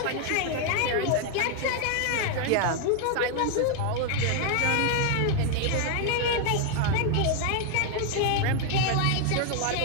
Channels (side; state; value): both; different; correlation 0.00